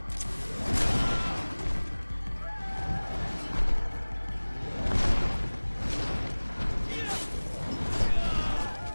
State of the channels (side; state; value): both; inverted; correlation -1.00